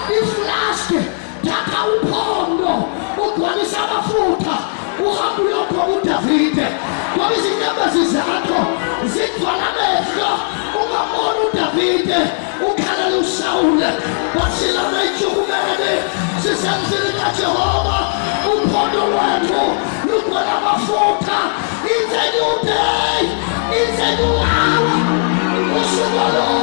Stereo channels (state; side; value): silent; right; digital silence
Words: iflaske datha uphondo ugcwalisa amafutha uhambe uyopha uDavide ngoba izinyembezi zakho zigcwala amehlo ungamona uDavide ukhalela uSawule wasilana ijukumene sisemzini kaJehova uphondo lwethu lugcwala amafutha it's a new day it's a new hour usuku